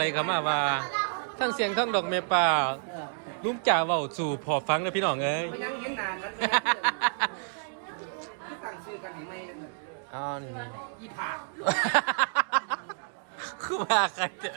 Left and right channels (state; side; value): silent; left; digital silence